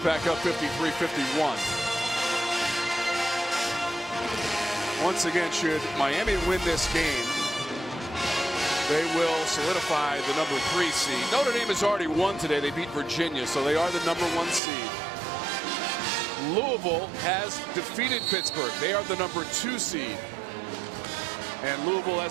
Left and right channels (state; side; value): drops out; left; at 14.6 s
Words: up 53-51. Once again, should Miami win this game, they will solidify the number 3 seed. Notre Dame has already won today. They beat Virginia, so they are the number 1 seed. Louisville has defeated Pittsburgh. They are the number 2 seed. And Louisville,